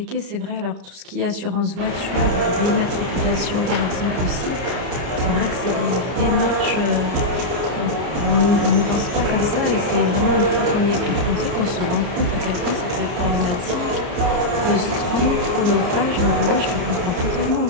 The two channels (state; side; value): late; left; 34 ms